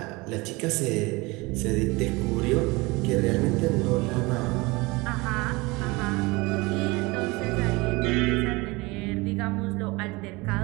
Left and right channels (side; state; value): left; quieter; 23.9 dB